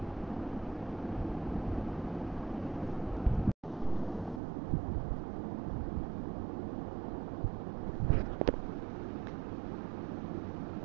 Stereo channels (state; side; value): drops out; left; at 4.4 s